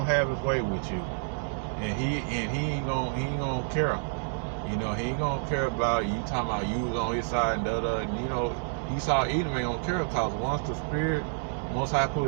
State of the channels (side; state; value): left; silent; digital silence